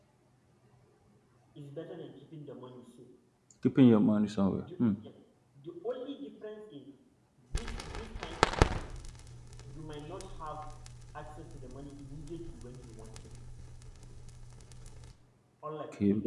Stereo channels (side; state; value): both; identical; correlation 1.00